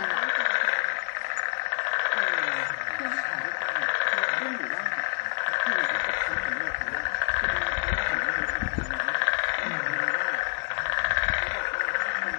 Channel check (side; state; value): right; silent; 55 dB below the other